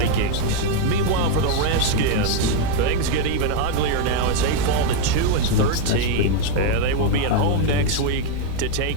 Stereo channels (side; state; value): both; different; correlation 0.01